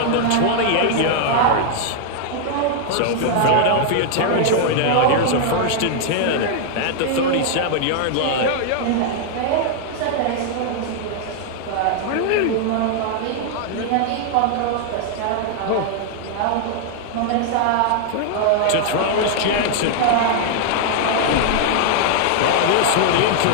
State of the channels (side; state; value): both; different; correlation -0.01